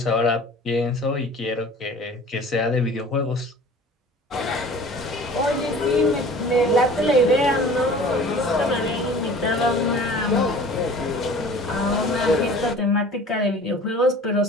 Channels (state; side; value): normal; both; correlation 0.45